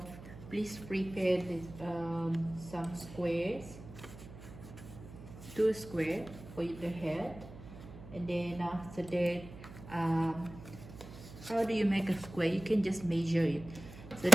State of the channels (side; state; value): right; noise; hum, 15 dB below the sound